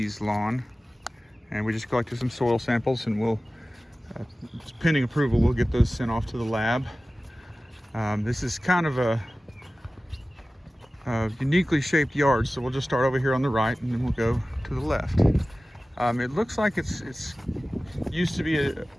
lawn, and we just collected some soil samples, and pending approval, we'll get those sent off to the lab. This is kind of a uniquely shaped yard, so we'll just start over here on the right, and then we'll go to the left. It looks like it's used to be a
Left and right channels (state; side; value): normal; both; correlation 0.96